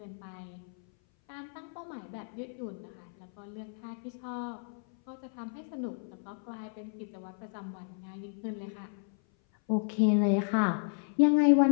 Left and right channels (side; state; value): right; silent; 56 dB below the other